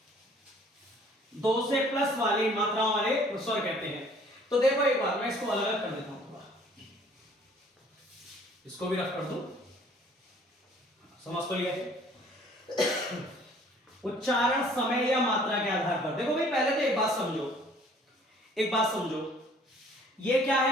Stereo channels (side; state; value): both; normal; correlation 0.56